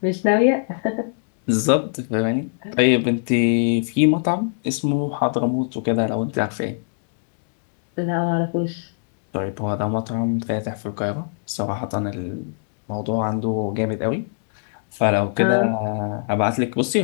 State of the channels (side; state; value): right; silent; digital silence